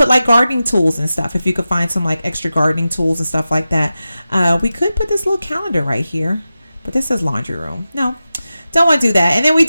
like gardening tools and stuff. If you could find some like extra gardening tools and stuff like that, we could put this little calendar right here. But this says laundry room. No, don't want to do that. And then we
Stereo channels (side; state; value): both; inverted; correlation -0.94